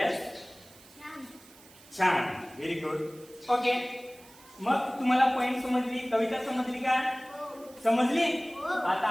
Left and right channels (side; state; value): right; noise; hiss, 23 dB below the sound